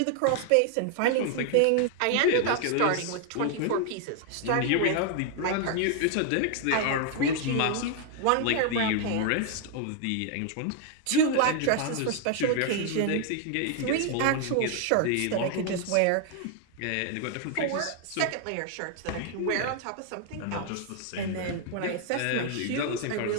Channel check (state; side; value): different; both; correlation 0.00